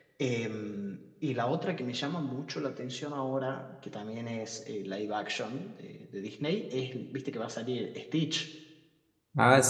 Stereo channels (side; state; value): both; identical; correlation 1.00